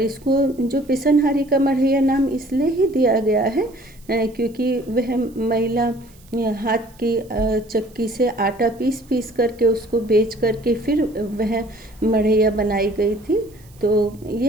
इसको जो पिसनहारी का मढ़ैया नाम इसलिए ही दिया गया है क्योंकि वह महिला हाथ की चक्की से आटा पीस करके उसको बेच करके फिर वह मढ़ैया बनाई गई थी। तो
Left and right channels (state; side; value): noise; right; hiss, 28 dB below the sound